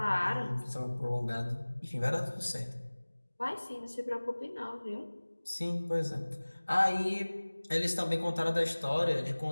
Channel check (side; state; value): both; inverted; correlation -1.00